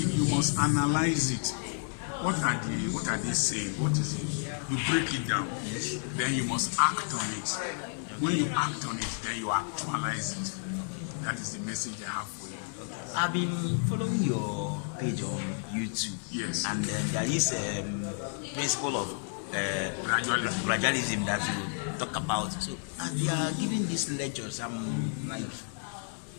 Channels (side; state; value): right; silent; 57 dB below the other